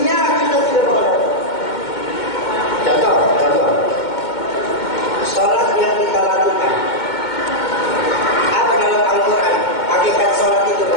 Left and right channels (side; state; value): right; late; 2.2 ms